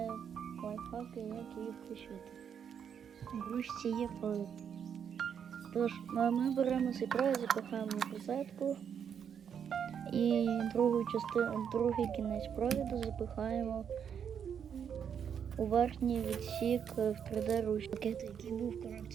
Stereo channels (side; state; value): left; quieter; 7.9 dB